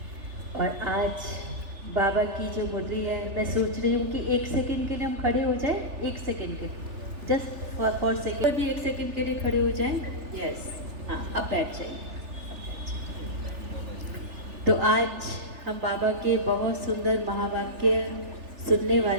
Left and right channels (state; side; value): late; left; 3.4 ms